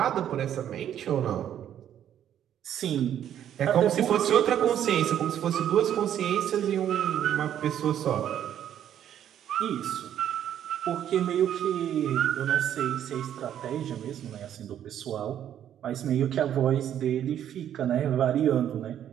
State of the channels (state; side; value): quieter; left; 10.3 dB